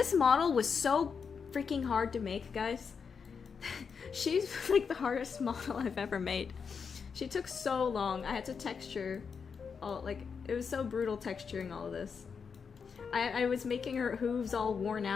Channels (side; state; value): right; quieter; 6.0 dB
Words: model was so freaking hard to make, guys. She's like the hardest model I've ever made. She took so long. I had to texture all, like, it was so brutal texturing all of this. I was making her hooves all worn